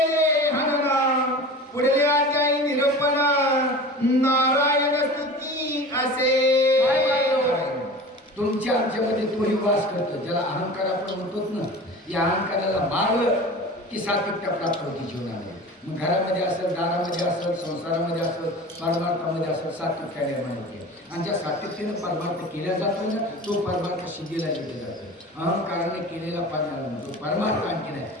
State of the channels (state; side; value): normal; both; correlation 0.36